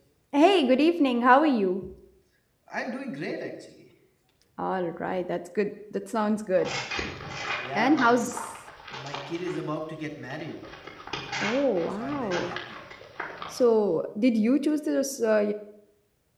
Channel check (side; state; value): both; identical; correlation 1.00